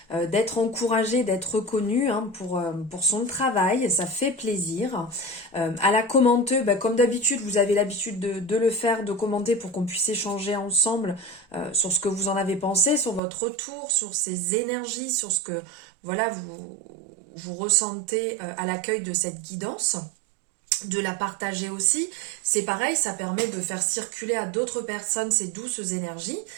d'être encouragé, d'être reconnu pour son travail. Ça fait plaisir. À la commenter, comme d'habitude, vous avez l'habitude de le faire, de commenter pour qu'on puisse échanger ensemble sur ce que vous en avez pensé, sur votre retour, sur ces énergies, sur ce que voilà, vous ressentez à l'accueil de cette guidance, de la partager aussi. C'est pareil, ça permet de faire circuler à d'autres personnes ces douces énergies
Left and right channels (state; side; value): drops out; left; at 13.2 s